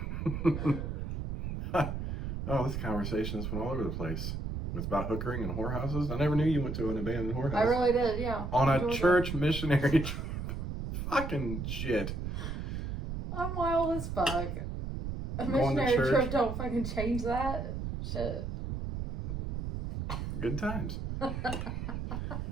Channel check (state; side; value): noise; right; rumble, 4 dB below the sound